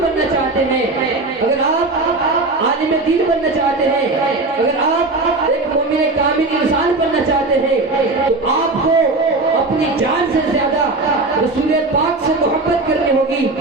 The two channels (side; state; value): left; quieter; 3.2 dB